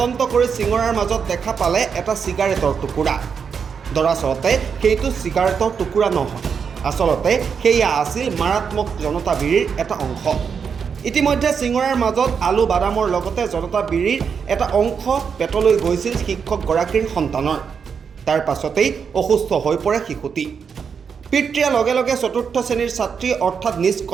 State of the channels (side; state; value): left; quieter; 6.4 dB